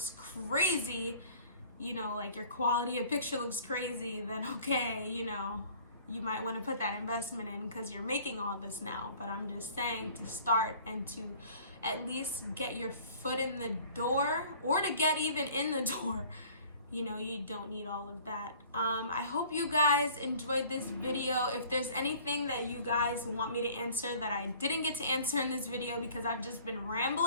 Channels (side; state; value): both; inverted; correlation -0.51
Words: crazy, you know, like your quality of picture looks crazy, then okay, you know, you might want to put that investment in because you're making all this now. But I'm just saying, to start and to at least get your foot in the door, or to get even in the door, you know, you don't need all of that. I hope you guys enjoyed this video. If there's anything that you guys want me to answer that I didn't get to answer in this video because I've just been